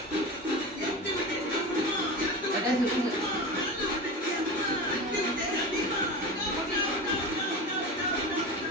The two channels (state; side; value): normal; both; correlation 0.28